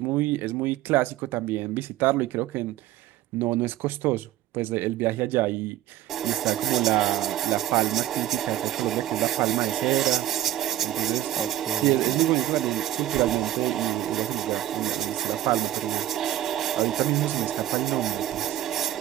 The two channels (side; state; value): left; quieter; 13.5 dB